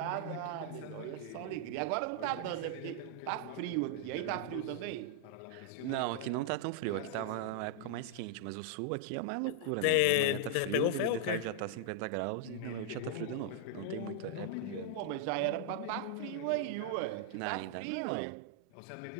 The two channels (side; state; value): both; different; correlation -0.01